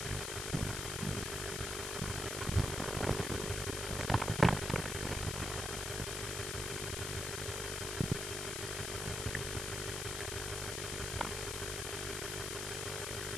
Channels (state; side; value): noise; left; hiss, 3 dB below the sound